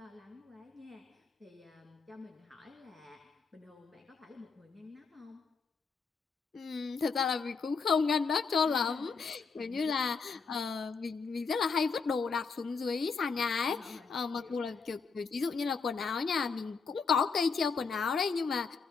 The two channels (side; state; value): right; quieter; 5.1 dB